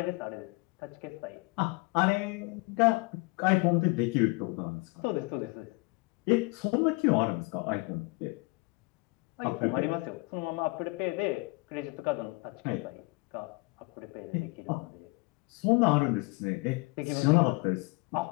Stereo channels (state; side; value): quieter; right; 27.9 dB